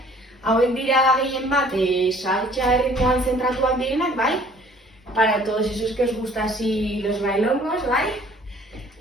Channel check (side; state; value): both; normal; correlation 0.55